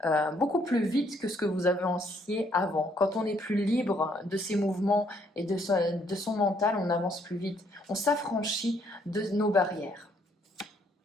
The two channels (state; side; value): normal; both; correlation 0.68